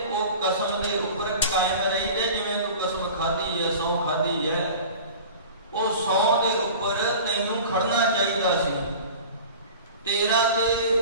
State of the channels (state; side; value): inverted; both; correlation -0.39